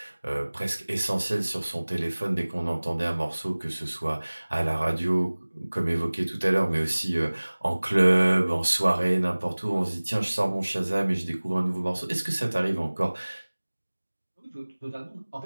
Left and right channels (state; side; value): inverted; both; correlation -1.00